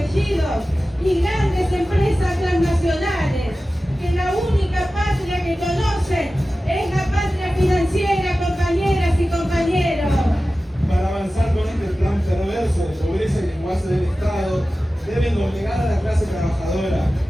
y grandes empresas transnacionales, que la única patria que conocen es la patria financiera, compañeras y compañeros. Para avanzar con este plan perverso de pobreza y lenguaje del Estado, deben obligar a la clase trabajadora,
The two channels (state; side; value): normal; both; correlation 0.95